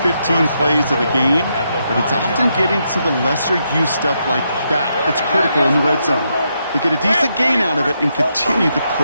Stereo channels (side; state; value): both; inverted; correlation -0.80